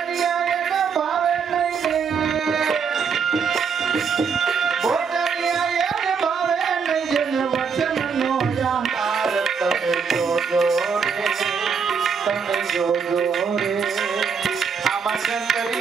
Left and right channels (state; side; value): quieter; left; 6.0 dB